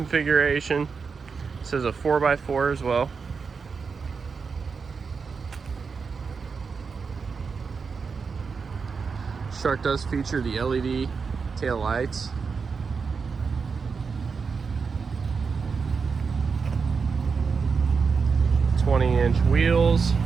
This is a 4x4 as well. This truck does feature the LED tail lights. "20-inch wheels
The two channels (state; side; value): quieter; left; 5.3 dB